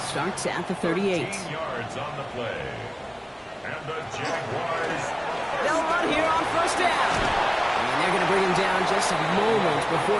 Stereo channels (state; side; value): identical; both; correlation 1.00